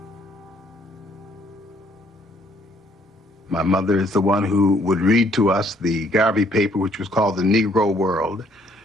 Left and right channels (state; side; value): normal; both; correlation 0.65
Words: My mother is the one who would read to us the Garvey paper, which was called the Negro World.